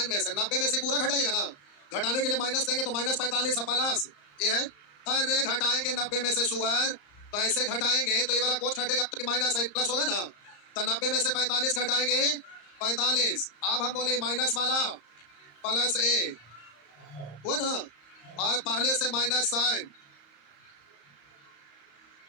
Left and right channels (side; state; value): right; late; 34 ms